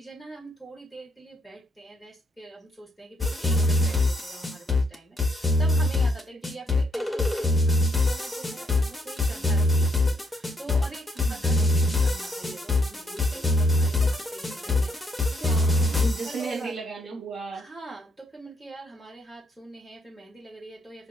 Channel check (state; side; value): normal; both; correlation 0.72